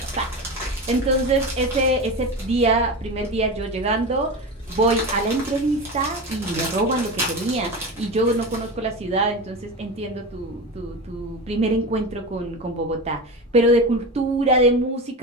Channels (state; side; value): normal; both; correlation 0.24